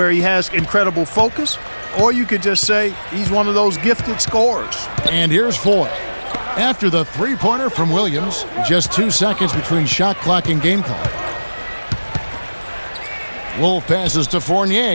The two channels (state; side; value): inverted; both; correlation -1.00